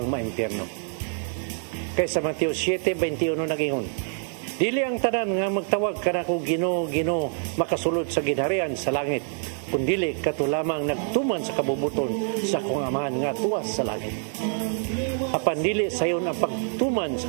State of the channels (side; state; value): left; silent; 57 dB below the other